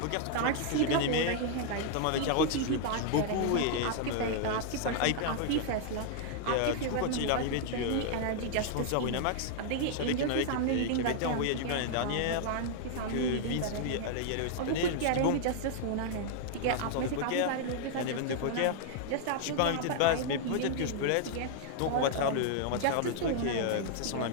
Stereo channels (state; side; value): different; both; correlation -0.01